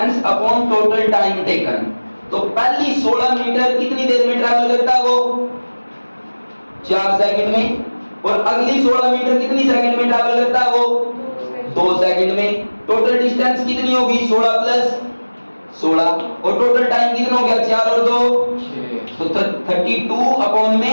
upon total time taken. तो पहली 16 मीटर कितनी देर में ट्रैवल करता है वो, 4 सेकंड में, और अगली 16 मीटर कितनी सेकंड में ट्रैवल करता है वो, 2 सेकंड में। टोटल डिस्टेंस कितनी होगी, 16 प्लस 16, और टोटल टाइम कितना हो गया, 4 और 2 तो 32 अपॉन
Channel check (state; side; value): inverted; both; correlation -1.00